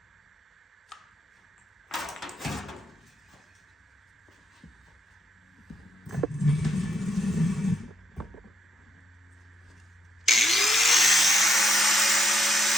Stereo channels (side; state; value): both; normal; correlation 0.76